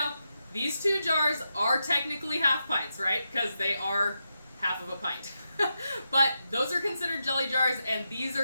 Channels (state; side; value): inverted; both; correlation -0.86